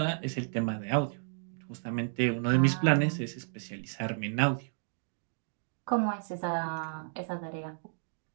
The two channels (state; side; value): silent; left; digital silence